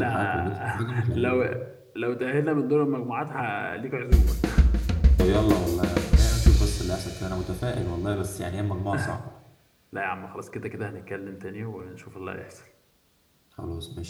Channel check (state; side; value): identical; both; correlation 1.00